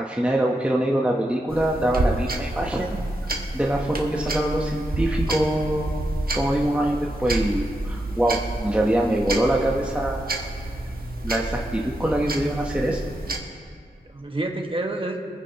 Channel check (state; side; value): normal; both; correlation 0.84